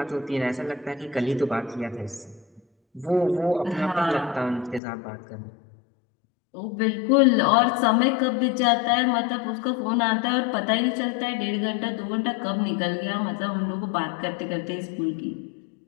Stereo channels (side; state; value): right; drops out; at 4.8 s